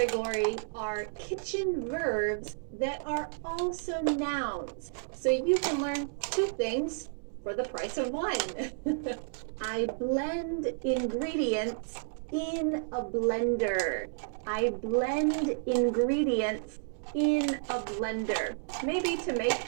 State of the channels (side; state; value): left; silent; digital silence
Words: are kitchen verbs that are also nouns. So you can learn two things for the price of one. I blend ingredients in a blender. I blend ingredients in a blender. Maybe to make